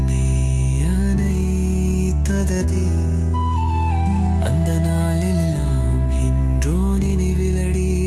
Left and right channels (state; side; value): identical; both; correlation 1.00